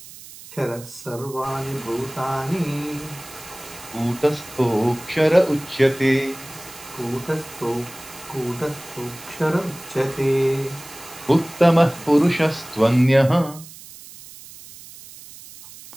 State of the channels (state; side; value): noise; right; hiss, 17 dB below the sound